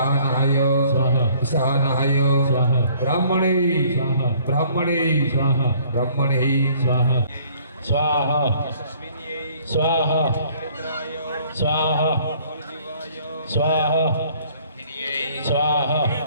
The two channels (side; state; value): both; inverted; correlation -0.58